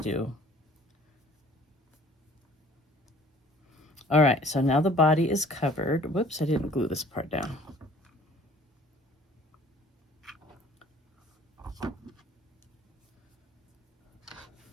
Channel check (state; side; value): normal; both; correlation 0.52